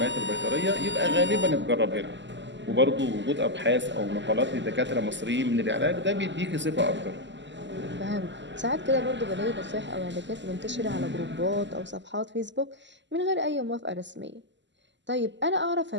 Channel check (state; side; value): late; left; 0.53 ms